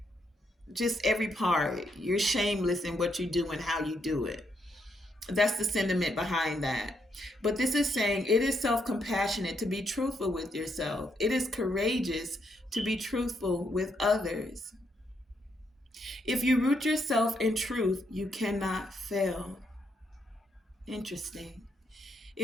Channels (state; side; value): normal; both; correlation 0.77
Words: just every part. You're shameless in what you do and how you do it. That's the sentiment behind that. But this is saying it is self-compassionate to be truthful with yourself. It is courageous to be truthful with others. If you root yourself in truth, you cannot fail. Interesting.